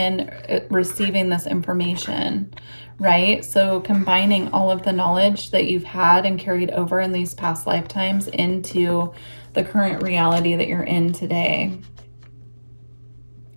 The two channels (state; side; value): inverted; both; correlation -1.00